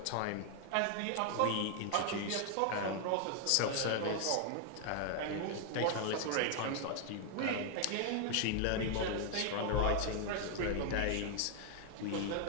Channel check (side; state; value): both; different; correlation 0.00